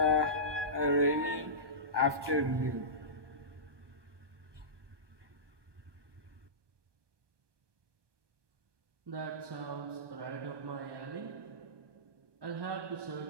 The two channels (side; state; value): left; late; 1.2 ms